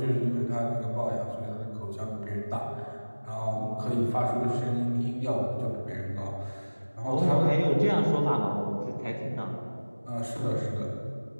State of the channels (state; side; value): inverted; both; correlation -1.00